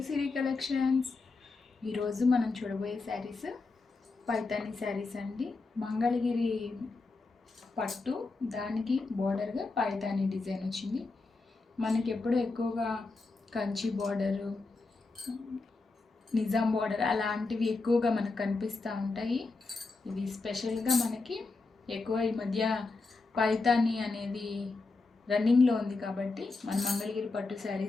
Siri collections. ఈరోజు మనం చూడబోయే శారీస్ పైతాని శారీస్ అండి. మంగళగిరి పట్టు, దానికి బోర్డర్గా పైతాని డిజైన్ వచ్చింది. మనకి ఎప్పుడు ఎక్కువగా కంచి బోర్డరు, నిజాం బోర్డర్ అలాంటివి ఎక్కువగా మనకు కనిపిస్తూ ఉంటాయి. ఇవి స్పెషల్గా మనకి ఎక్కువ ఈ మధ్య పైతాని అనేది రన్నింగ్లో ఉంది కాబట్టి మన మంగళగిరి పట్టు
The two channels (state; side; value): quieter; right; 3.7 dB